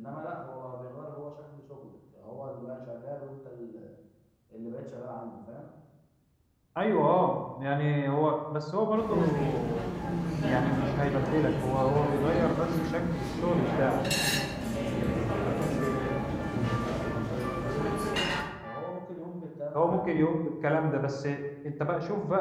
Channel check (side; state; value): both; identical; correlation 1.00